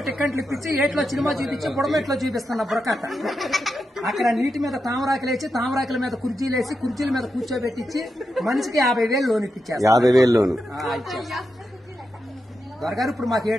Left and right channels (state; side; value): normal; both; correlation 0.87